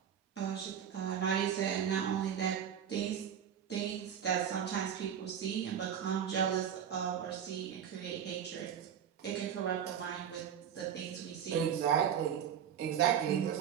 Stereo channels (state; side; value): quieter; left; 8.7 dB